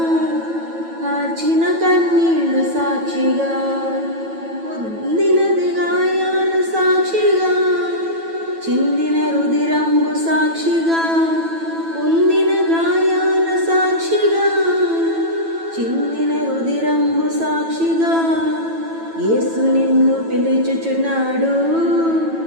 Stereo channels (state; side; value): late; left; 9.1 ms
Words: కార్చిన కన్నీళ్లు సాక్షిగా, పొందినది గాయాలు సాక్షిగా, చిందిన రుధిరంబు సాక్షిగా, పొందిన గాయాల సాక్షిగా, చిందిన రుధిరంబు సాక్షిగా, యేసు నిన్ను పిలుచుచున్నాడు,